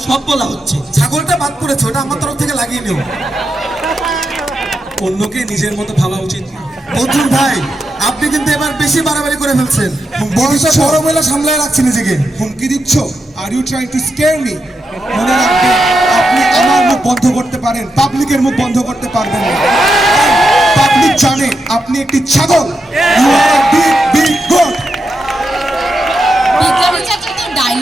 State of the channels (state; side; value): normal; both; correlation 0.86